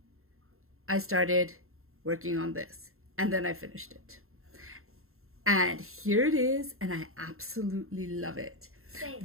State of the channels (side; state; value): left; late; 0.62 ms